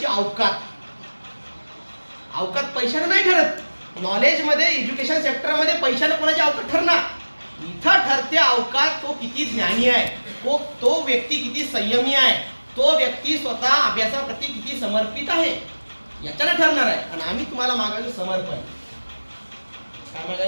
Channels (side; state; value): both; inverted; correlation -1.00